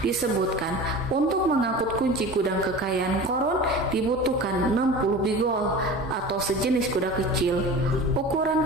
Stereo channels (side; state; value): both; normal; correlation 0.35